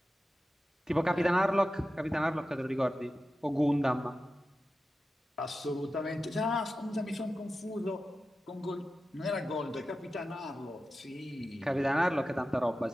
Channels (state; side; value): normal; both; correlation 0.93